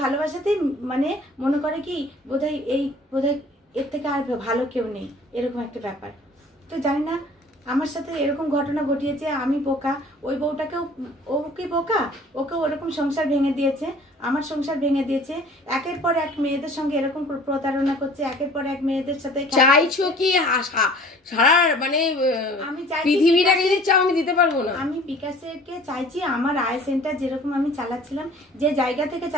ভালোবাসাতেই মানে মনে করে কি বোধহয় এর থেকে আর ভালো কেউ নেই, এরকম একটা ব্যাপার। তো জানি না, আমার সাথে এরকম ঘটনা ঘটিয়েছে, আমি বোকা, ওই বউটাকেও, ও কি বোকা, ওকেও ওরকম সংসার ভেঙে দিয়েছে, আমার সংসার ভেঙে দিয়েছে, একের পর এক মেয়েদের সঙ্গে এরকম প্রতারণা করছে, একের পর এক মেয়েদের সাথে। চাইছো কি সারা মানে আমি চাইছি পৃথিবীটাকে যদি চাও আমি দিতে পারবো না। আমি বিকাশকে চাইছি আমার আয় সেন্টার যেরকম আমি চালাচ্ছিলাম, যে জায়গা থেকে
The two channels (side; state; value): both; normal; correlation 0.49